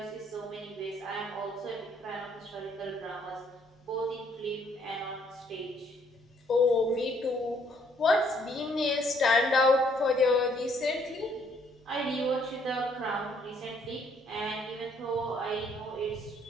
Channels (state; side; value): normal; both; correlation 0.66